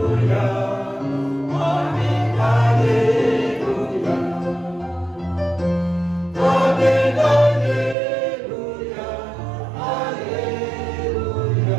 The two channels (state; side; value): drops out; left; at 8.0 s